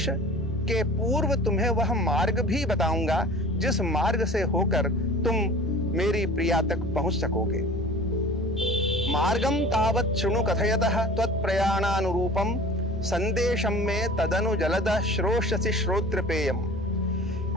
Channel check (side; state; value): both; normal; correlation 0.42